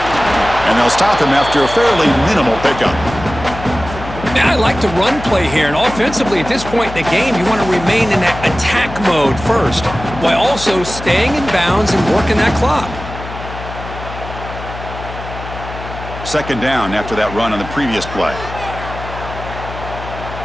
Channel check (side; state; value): left; noise; hum, 11 dB below the sound